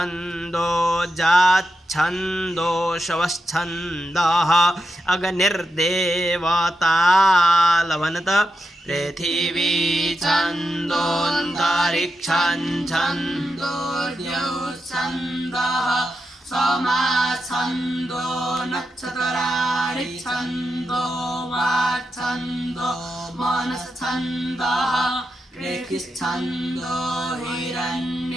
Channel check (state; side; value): normal; both; correlation 0.87